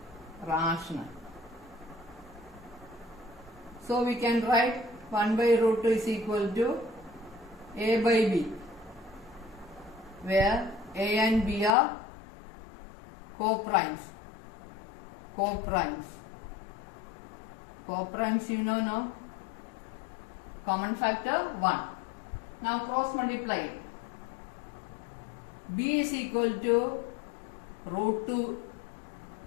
rational. So we can write 1 by root 2 is equal to a by b, where a and b are co-primes. Co-primes you know now. Common factor 1. Now cross multiply. B is equal to root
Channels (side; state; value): right; drops out; at 11.8 s